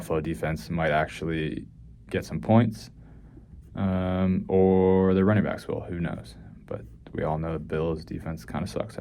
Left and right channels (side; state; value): both; identical; correlation 1.00